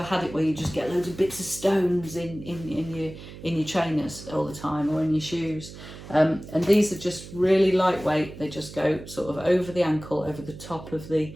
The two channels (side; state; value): right; noise; hum, 15 dB below the sound